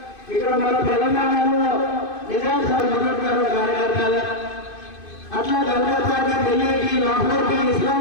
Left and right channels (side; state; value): right; late; 2.5 ms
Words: ఇక్కడ మన తెలంగాణలో నిజాం సార్ మొదలుగారు కార్యకర్తలు, అట్లా కలకత్తాకి, ఢిల్లీకి, లాహోర్కి,